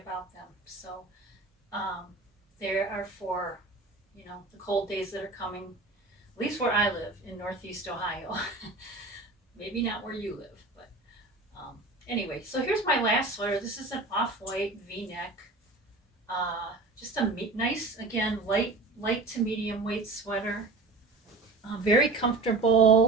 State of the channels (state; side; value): quieter; left; 3.4 dB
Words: about them. So they are for, the cold days that are coming, at least where I live in Northeast Ohio. Maybe not where you live, but anyway, so here's my last sweater. This is an off-white V-neck. Just a nice, again, light to medium weight sweater. Very